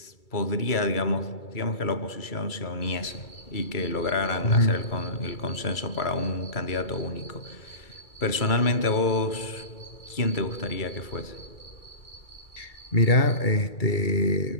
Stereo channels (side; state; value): right; late; 2.3 ms